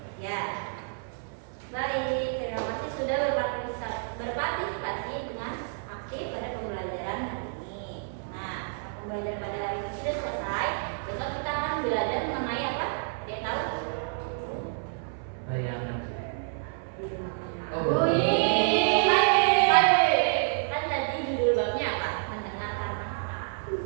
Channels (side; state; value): left; silent; 55 dB below the other